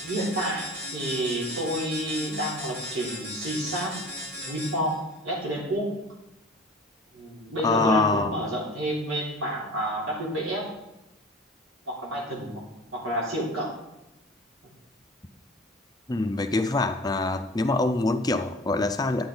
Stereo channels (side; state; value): both; normal; correlation 0.40